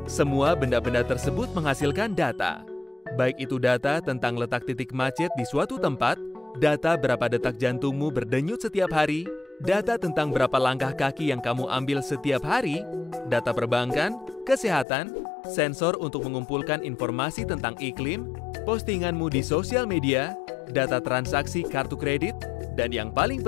Semua benda-benda tersebut menghasilkan data. Baik itu data tentang letak titik macet di suatu tempat, data berapa detak jantungmu berdenyut setiap hari, data tentang berapa langkah kaki yang kamu ambil setiap hari, data perbankan, kesehatan, sensor untuk mengumpulkan informasi tentang iklim, postinganmu di sosial media, data transaksi kartu kredit, dan yang paling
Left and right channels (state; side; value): drops out; right; at 14.9 s